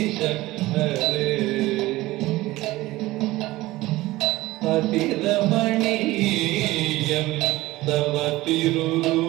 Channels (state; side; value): quieter; left; 18.4 dB